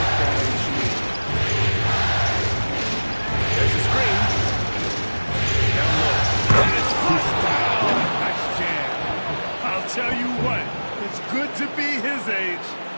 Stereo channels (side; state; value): both; inverted; correlation -1.00